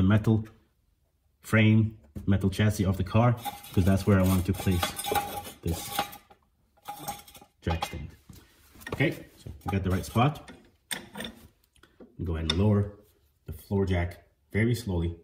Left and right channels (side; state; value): both; identical; correlation 1.00